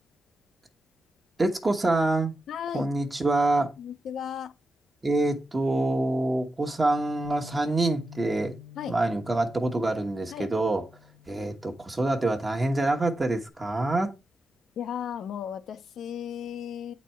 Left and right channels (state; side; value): normal; both; correlation 0.89